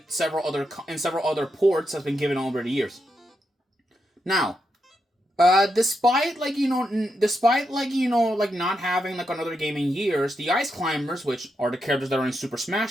several other ports has been given over the years. Now, despite not having another game in years, the Ice Climbers, which are the characters that are in Super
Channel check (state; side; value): normal; both; correlation 0.84